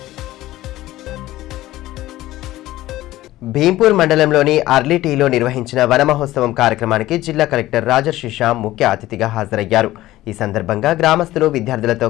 భీంపూర్ మండలంలోని అర్లీటీలో నిర్వహించిన వన మహోత్సవం కార్యక్రమానికి జిల్లా కలెక్టర్ రాజర్షి షా ముఖ్య అతిథిగా హాజరయ్యారు. ఈ సందర్భంగా గ్రామస్తులు విద్యార్థులతో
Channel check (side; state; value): right; quieter; 16.0 dB